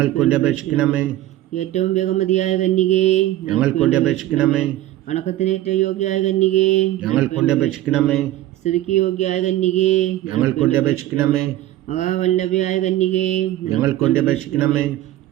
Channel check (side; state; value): left; quieter; 14.4 dB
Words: വേണ്ടി അപേക്ഷിക്കണമേ. ഏറ്റവും ബഹുമതിയായ കന്യകേ, ഞങ്ങൾക്ക് വേണ്ടി അപേക്ഷിക്കണമേ. വണക്കത്തിന് ഏറ്റവും യോഗ്യയായ കന്യകേ, ഞങ്ങൾക്ക് വേണ്ടി അപേക്ഷിക്കണമേ. സ്തുതിക്ക് യോഗ്യയായ കന്യകേ, ഞങ്ങൾക്ക് വേണ്ടി അപേക്ഷിക്കണമേ. മഹാവല്ലഭയായ കന്യകേ, ഞങ്ങൾക്ക് വേണ്ടി അപേക്ഷിക്കണമേ.